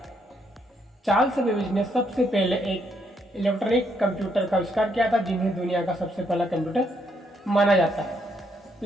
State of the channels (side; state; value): both; normal; correlation 0.74